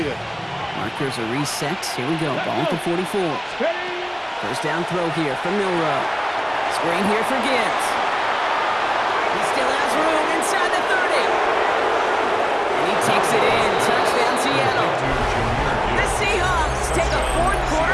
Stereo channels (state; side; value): identical; both; correlation 1.00